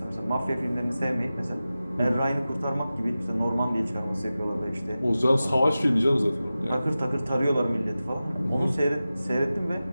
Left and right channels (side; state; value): both; inverted; correlation -0.95